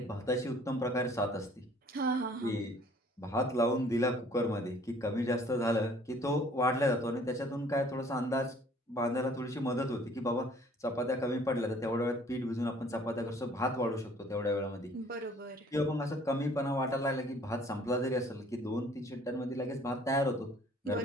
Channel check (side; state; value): both; normal; correlation 0.56